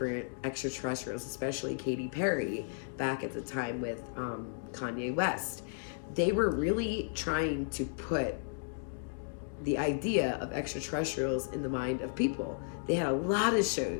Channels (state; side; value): silent; right; digital silence